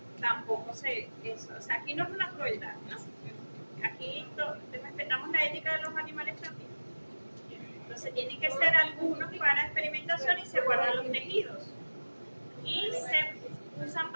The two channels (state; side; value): inverted; both; correlation -1.00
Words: tampoco eso, o sea, aquí no es una crueldad, ¿no? Aquí respetamos la ética de los animales también. Entonces tienen que ser algunos para experimentación y se guardan los tejidos. Y se usan